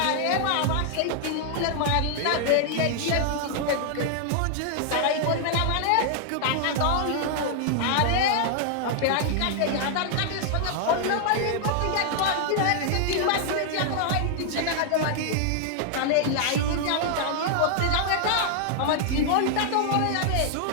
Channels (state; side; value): different; both; correlation 0.00